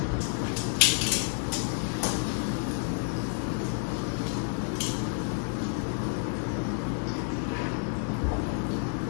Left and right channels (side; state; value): right; silent; 58 dB below the other